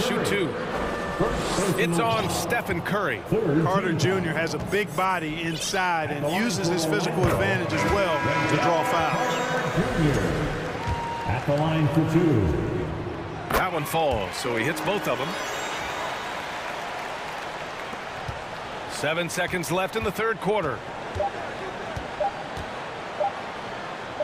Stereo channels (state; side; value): identical; both; correlation 1.00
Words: 2. It's on Stephen Curry. Carter Jr. has a big body inside and uses his physical advantage as well to draw fouls. At the line for 2. That one falls, so he hits both of them. 7 seconds left in the third quarter.